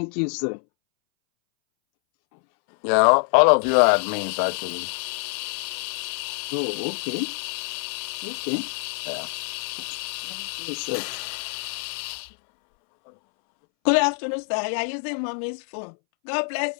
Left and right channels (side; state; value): right; silent; 62 dB below the other